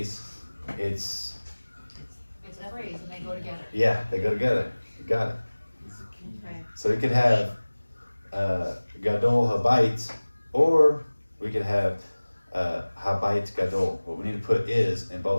it's It's a phrase and they go together. yeah, they go together. You got it. This is a key. Okay. So we could have Gadol Habayit, or we could have Habayit Gadol. What we need to put is in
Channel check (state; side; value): inverted; both; correlation -1.00